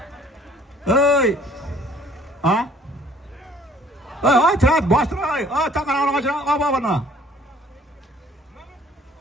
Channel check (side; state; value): both; normal; correlation 0.56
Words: Ey, Ha? Ay, trat, bastır ay. Takan ağaçına aba bana.